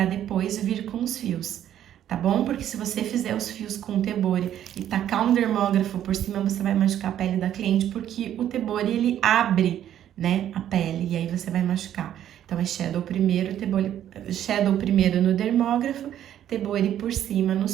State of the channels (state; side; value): quieter; left; 11.0 dB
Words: depois vir com os fios, tá bom? Porque se você fizer os fios com tebore e tacar um dermógrafo por cima, você vai machucar a pele da cliente, porque o tebore ele abre, né, a pele, e aí você vai machucar. Então, é shadow primeiro, shadow primeiro no dermógrafo, Tebori por cima